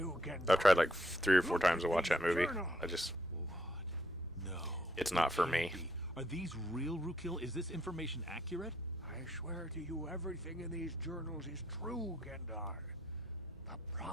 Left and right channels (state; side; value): normal; both; correlation 0.72